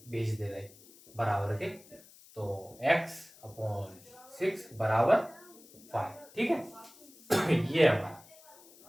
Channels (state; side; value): noise; left; hiss, 23 dB below the sound